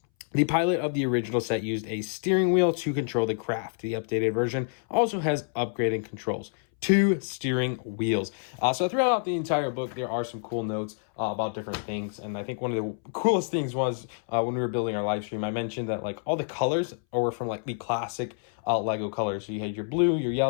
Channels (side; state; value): right; silent; 60 dB below the other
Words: the pilot of the original set used a steering wheel to control the craft. The updated version also has upgraded controls. 2 steering wheels. So throughout the entire book, there are some cool notes about different things. And I think one of the coolest things was when we were building our live stream, I mentioned that all the colors were from the classic Lego colors. So you had your blue, your